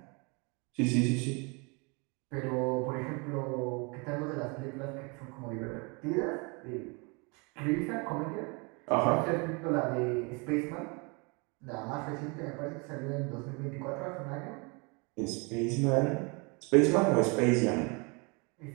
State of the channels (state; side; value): quieter; left; 30.9 dB